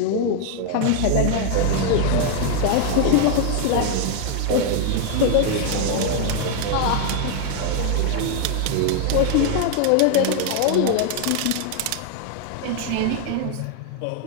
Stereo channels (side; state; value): both; different; correlation 0.00